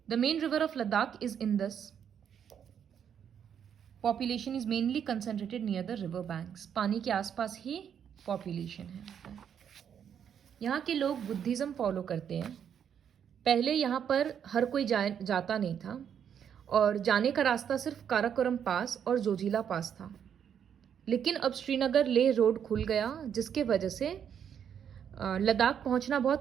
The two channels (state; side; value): quieter; left; 8.4 dB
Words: The main river of Ladakh is Indus. Population is mainly concentrated near the river banks. पानी के आसपास ही पॉपुलेशन है। यहाँ के लोग बुद्धिज़्म फॉलो करते हैं। पहले यहाँ पर हर कोई जाता नहीं था, और जाने का रास्ता सिर्फ काराकोरम पास और जोजिला पास था। लेकिन अब श्रीनगर लेह रोड खुल गया, जिसके वजह से लद्दाख पहुँचना